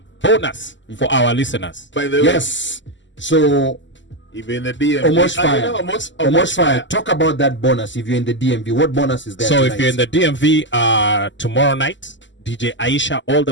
bonus for our listeners. By the way, yes. So even in the DMV, OmoshFaya, talk about that bonus. If you're in the DMV, what bonus is there? So tonight? if you're in the DMV tomorrow night, DJ Aisha all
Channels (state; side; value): late; right; 0.54 ms